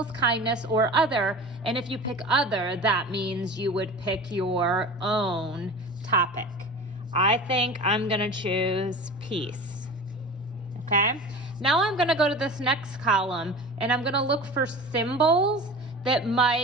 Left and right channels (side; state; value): both; normal; correlation 0.34